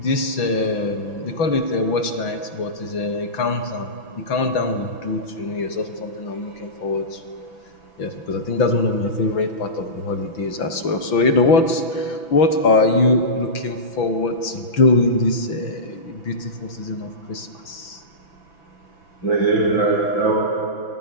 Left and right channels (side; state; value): right; late; 6.0 ms